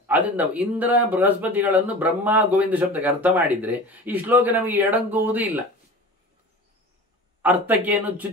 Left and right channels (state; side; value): normal; both; correlation 0.36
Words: ಅದರಿಂದ ಇಂದ್ರ ಬೃಹಸ್ಪತಿಗಳನ್ನು ಬ್ರಹ್ಮ ಗೋವಿಂದ ಶಬ್ದಕ್ಕೆ ಅರ್ಥ ಮಾಡಿದ್ರೆ ಈ ಶ್ಲೋಕ ನಮಗೆ ಎಡಂಗುವುದೂ ಇಲ್ಲ, ಅರ್ಥಕ್ಕೇನು